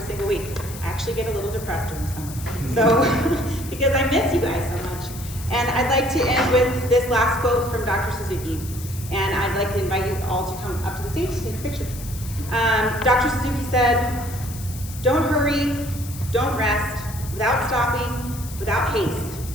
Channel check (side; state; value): left; noise; hiss, 14 dB below the sound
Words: single week. I actually get a little depressed during summer. So, because I miss you guys so much. And I'd like to end with this last quote from Dr. Suzuki. And I'd like to invite you all to come up to the stage to take a picture. Dr. Suzuki said, "Don't hurry, don't rest, without stopping, without haste.